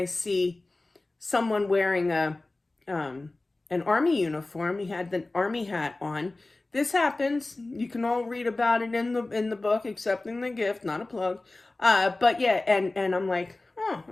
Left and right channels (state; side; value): quieter; right; 3.0 dB